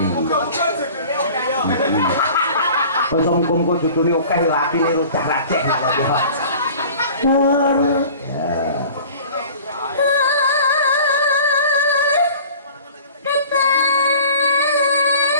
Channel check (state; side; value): inverted; both; correlation -0.44